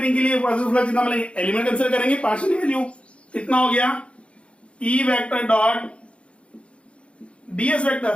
रिंग के लिए पास आउट फ्लक्स कितना मिलेंगे, एलिमेंट कंसिडर करेंगे, पार्शियल वैल्यू कितना हो गया, E vector dot DS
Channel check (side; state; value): right; late; 0.060 ms